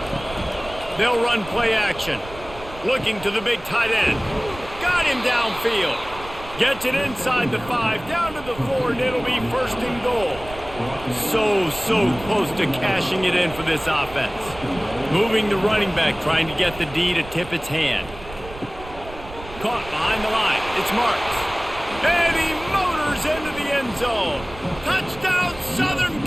They'll run play action. Looking to the big tight end. Got him downfield. Gets it inside the 5, down to the 4, and it'll be first and goal. So close to cashing it in for this offense. Moving the running back, trying to get the D to tip its hand. Caught behind the line. It's Marks. And he motors into the end zone. Touchdown, Southern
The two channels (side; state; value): right; noise; rumble, 15 dB below the sound